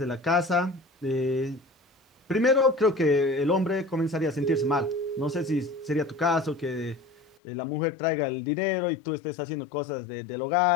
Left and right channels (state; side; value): drops out; right; at 7.4 s